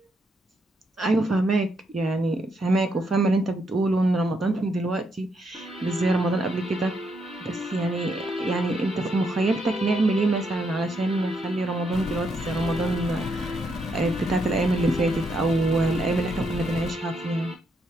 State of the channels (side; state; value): both; normal; correlation 0.77